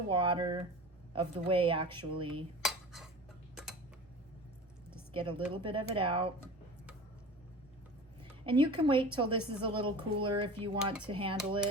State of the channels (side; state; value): both; normal; correlation 0.36